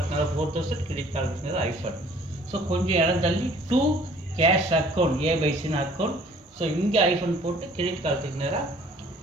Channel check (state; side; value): normal; both; correlation 0.55